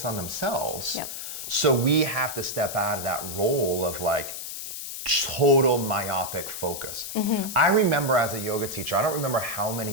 on themselves. Yep. So we have to step out of that role of like total myopic focus. I remember as a yoga teacher, I don't remember how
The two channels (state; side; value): noise; left; hiss, 7 dB below the sound